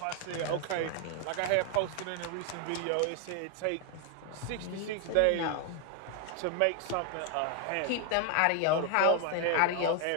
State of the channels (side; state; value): both; different; correlation 0.00